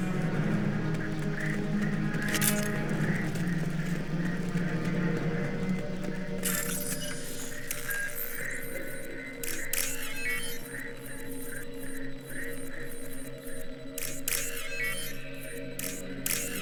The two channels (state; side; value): identical; both; correlation 1.00